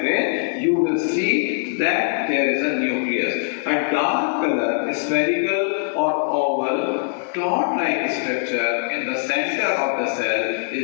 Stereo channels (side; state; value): right; silent; digital silence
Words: you will see that there is a nucleus. A dark color, spherical or oval, cloud-like structure in the center of the cell